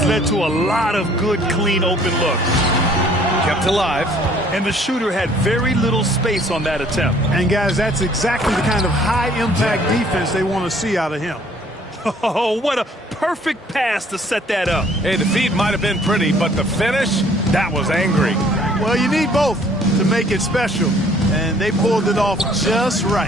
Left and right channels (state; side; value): normal; both; correlation 0.58